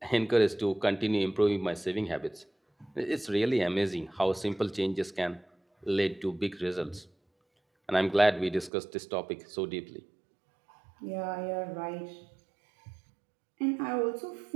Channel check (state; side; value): drops out; left; at 8.7 s